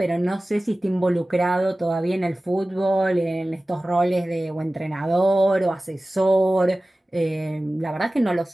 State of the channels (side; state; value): both; normal; correlation 0.97